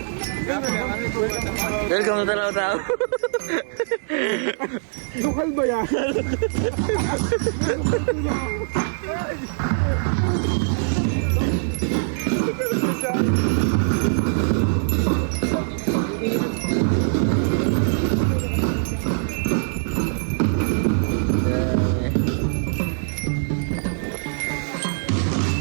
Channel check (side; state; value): left; silent; digital silence